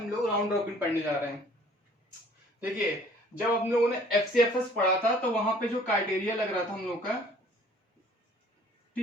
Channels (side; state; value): both; normal; correlation 0.54